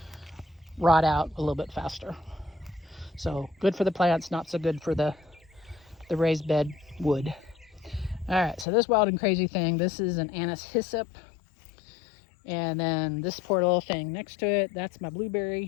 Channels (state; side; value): drops out; right; at 8.7 s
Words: rot out a little bit faster. So good for the plants, not so good for the raised bed wood. All right, so this wild and crazy thing, this is an anise hyssop. And then this poor little thing next to it, that's my